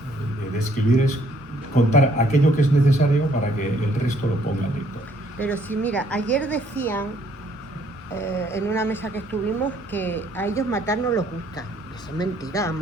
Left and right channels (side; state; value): both; normal; correlation 0.65